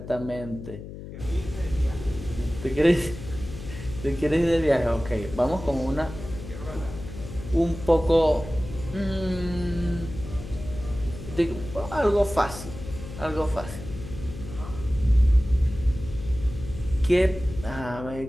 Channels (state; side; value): noise; left; hum, 12 dB below the sound